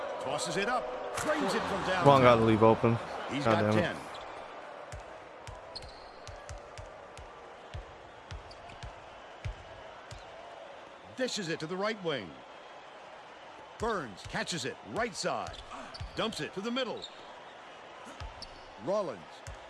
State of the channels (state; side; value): identical; both; correlation 1.00